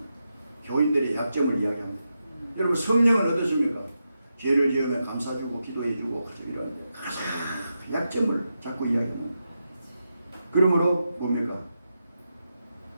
교인들의 약점을 이야기합니다. 여러분 성령은 어떻습니까? 죄를 지으면 감사주고 기도해주고 이런 약점을 자꾸 이야기합니다. 그러므로 뭡니까?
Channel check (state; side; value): inverted; both; correlation -0.87